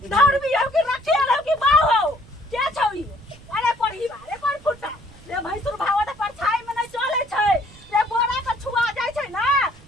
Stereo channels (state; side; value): noise; right; rumble, 24 dB below the sound